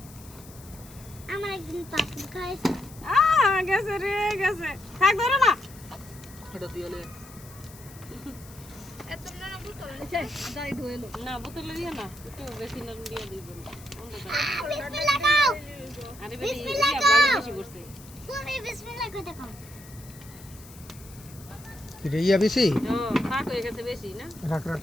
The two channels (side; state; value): left; noise; hiss, 20 dB below the sound